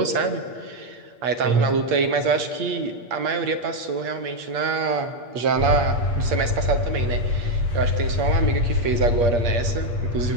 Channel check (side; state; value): left; late; 8.5 ms